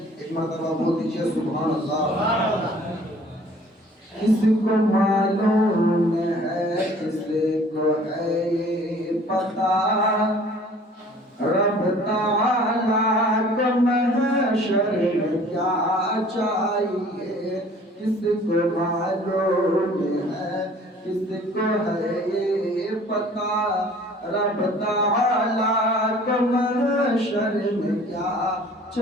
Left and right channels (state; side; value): normal; both; correlation 0.51